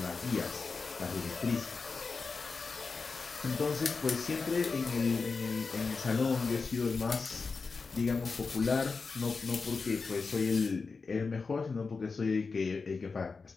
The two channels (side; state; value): right; quieter; 4.6 dB